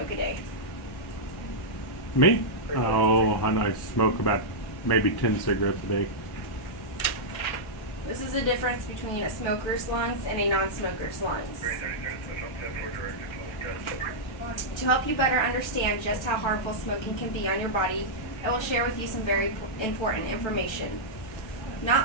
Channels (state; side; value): late; right; 1.3 ms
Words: a day? Me? Oh, I know I smoke about maybe 10 cigarettes a day. This is the difference between a smoker's lungs and a non-smoker's lungs. To help you better understand just how harmful smoking can be on your body, I will share with you some very important information. Not